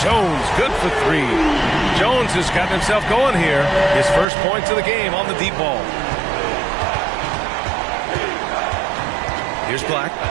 good for 3. Jones has gotten himself going here. His first points of the game on the deep ball. Here's Black.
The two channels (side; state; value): left; drops out; at 4.2 s